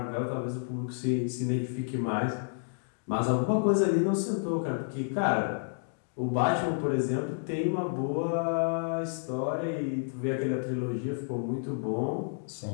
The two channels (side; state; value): right; silent; digital silence